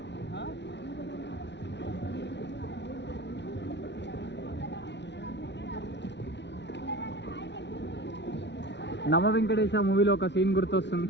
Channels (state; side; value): late; right; 0.51 ms